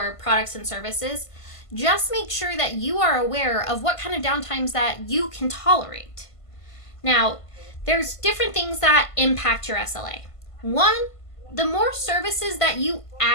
products and services, just make sure that you are aware of what kind of downtimes that you can tolerate. Now, there's different things that impact your SLA. One, the more services that you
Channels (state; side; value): late; right; 1.5 ms